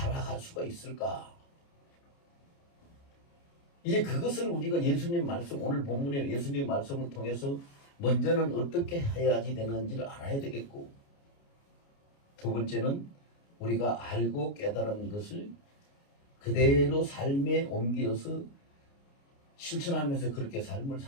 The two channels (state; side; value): late; right; 29 ms